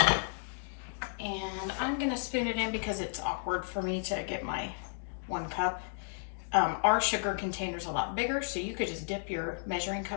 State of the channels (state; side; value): silent; right; digital silence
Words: And I'm gonna spoon it in because it's awkward for me to get my 1 cup. Our sugar container's a lot bigger, so you could just dip your measuring